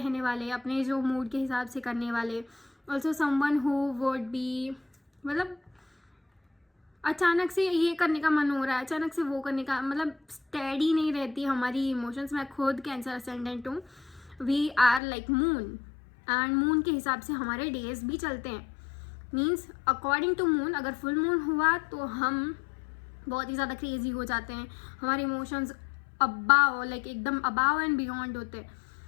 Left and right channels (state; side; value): drops out; right; at 15.0 s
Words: वाले, अपने जो मूड के हिसाब से करने वाले. Also someone who would B, मतलब अचानक से ये करने का मन हो रहा है, अचानक से वो करने का, मतलब स्टेडी नहीं रहती हमारी इमोशंस. मैं खुद कैंसर असेंडेंट हूँ. We are like moon and moon के हिसाब से हमारे डेज भी चलते हैं. मीन्स अकॉर्डिंग टू मून, अगर फुल मून हुआ तो हम बहुत ही ज़्यादा क्रेजी हो जाते हैं, हमारे इमोशंस अबाव, लाइक एकदम अबाव एंड बियॉन्ड होते हैं.